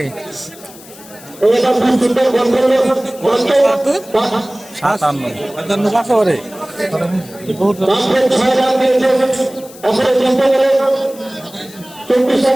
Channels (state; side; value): noise; left; hiss, 20 dB below the sound